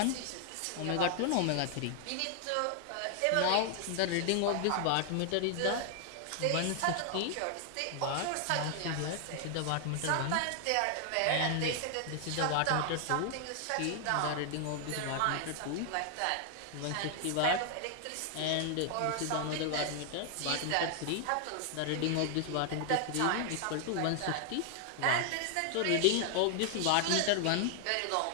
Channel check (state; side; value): different; both; correlation 0.00